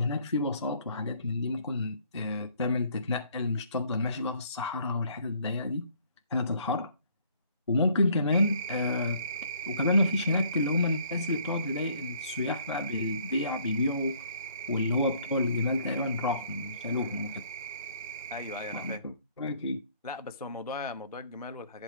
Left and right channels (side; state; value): both; inverted; correlation -0.61